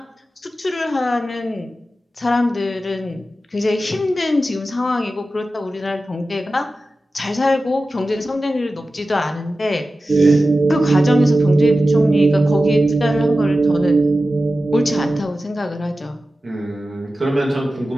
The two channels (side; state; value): both; normal; correlation 0.94